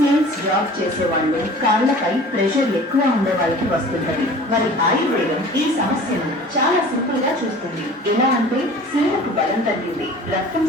జాబ్ చేసేవాళ్ళు, కాళ్లపై ప్రెషర్ ఎక్కువ ఉండే వాళ్ళకి వస్తుంటది. మరి ఆయుర్వేదం ఈ సమస్యను చాలా సింపుల్ గా చూస్తుంది. ఎలా అంటే శిలకు బలం తగ్గింది, రక్తం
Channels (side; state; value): both; normal; correlation 0.44